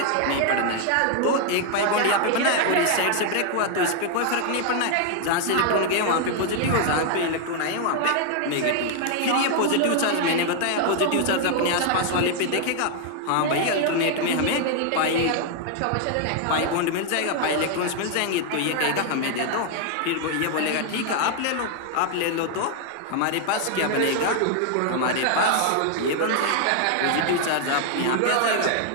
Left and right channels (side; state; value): both; different; correlation 0.00